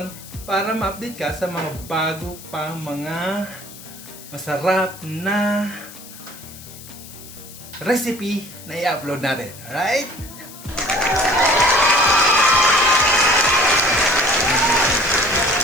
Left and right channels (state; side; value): noise; left; hiss, 17 dB below the sound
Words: para ma-update ka sa mga bago pang mga masarap na recipe na i-upload natin. Alright?